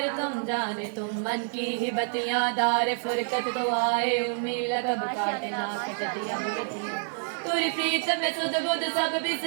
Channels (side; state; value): left; silent; digital silence